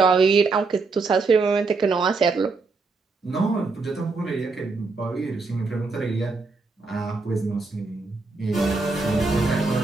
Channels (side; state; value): left; quieter; 4.0 dB